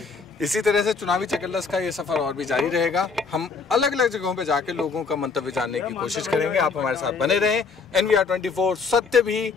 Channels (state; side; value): quieter; right; 4.8 dB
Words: इसी तरह से चुनावी चकल्लस का ये सफर और भी जारी रहेगा। हम अलग अलग जगहों पे जाके लोगों का मंतव्य जानने की कोशिश करेंगे। आप हमारे साथ बने रहें। NVR 24, सत्य भी